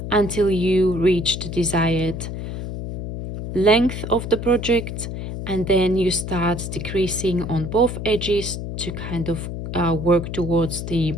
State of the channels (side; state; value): left; noise; hum, 6 dB below the sound